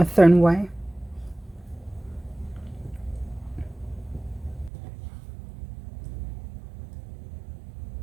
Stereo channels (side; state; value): left; drops out; at 4.7 s